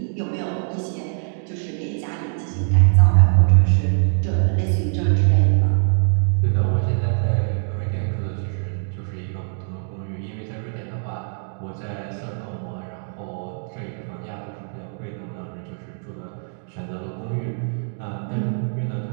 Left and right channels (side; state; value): left; silent; digital silence